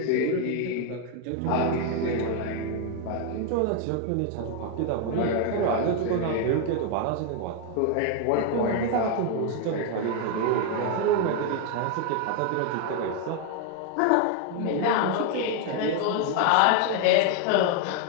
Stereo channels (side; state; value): both; different; correlation 0.01